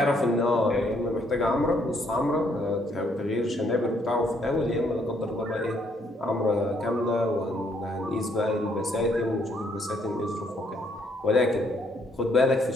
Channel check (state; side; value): normal; both; correlation 0.70